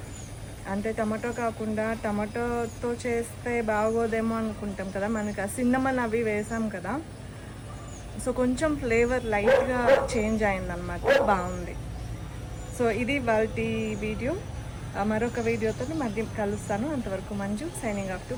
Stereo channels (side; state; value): both; identical; correlation 1.00